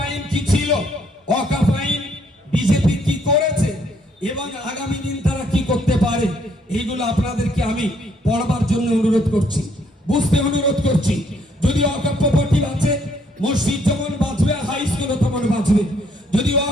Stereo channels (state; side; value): normal; both; correlation 0.68